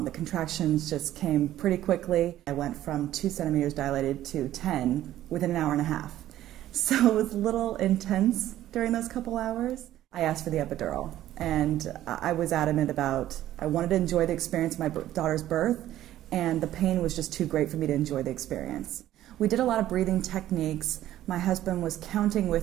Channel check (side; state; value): left; quieter; 13.3 dB